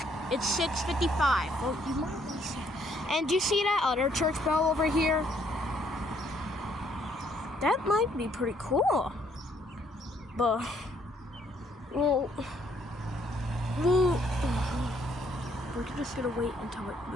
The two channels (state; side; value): normal; both; correlation 0.68